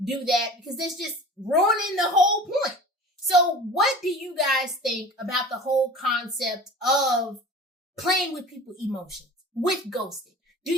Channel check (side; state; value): both; normal; correlation 0.39